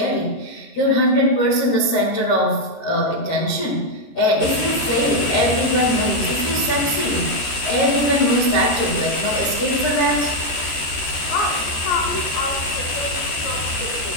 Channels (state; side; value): late; right; 14 ms